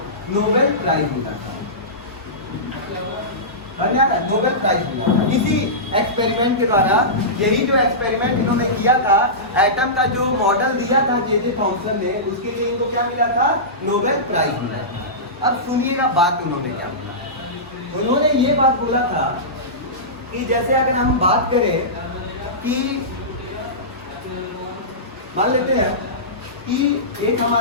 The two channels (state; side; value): normal; both; correlation -0.18